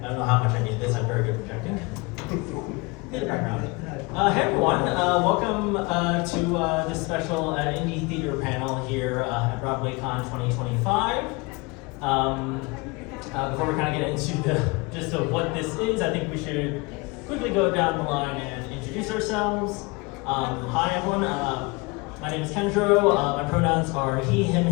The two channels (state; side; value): quieter; right; 26.3 dB